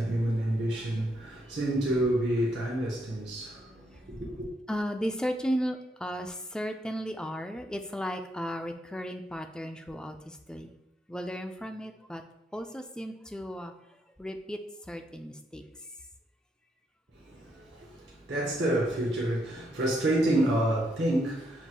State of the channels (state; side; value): normal; both; correlation 0.77